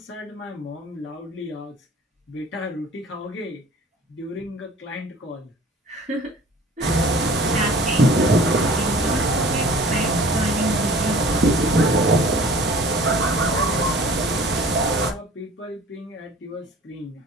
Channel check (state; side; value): normal; both; correlation 0.46